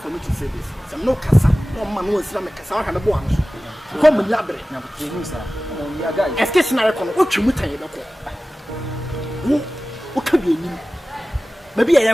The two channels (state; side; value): normal; both; correlation 0.96